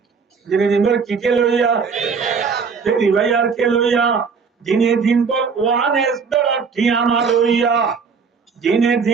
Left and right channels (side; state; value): left; quieter; 5.5 dB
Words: দিনে দিন বর কি কে লইয়া ফেরি ভাইয়ার কে লইয়া দিনে দিন বর ওয়ান এস বর ঠিয়ামা লইয়া দিনে